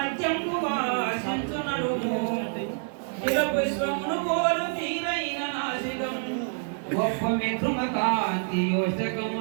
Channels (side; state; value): left; silent; digital silence